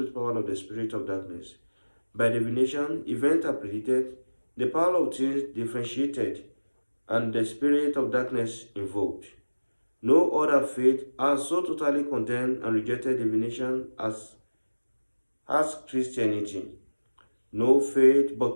power of the spirit of darkness. By divination, events are predicted, the power of things differentiated, and the spirit of darkness invoked. No other faith has so totally condemned and rejected divination as Christianity. No faith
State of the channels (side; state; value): both; inverted; correlation -1.00